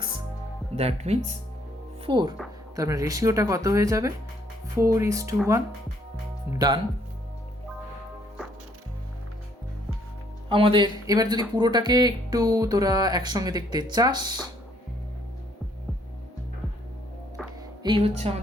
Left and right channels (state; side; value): normal; both; correlation 0.66